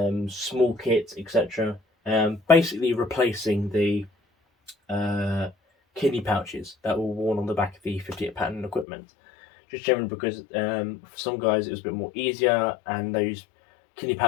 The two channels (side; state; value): right; drops out; at 8.8 s